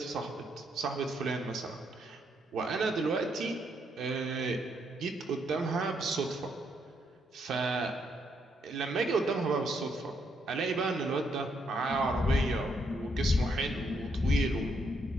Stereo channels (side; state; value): both; normal; correlation 0.75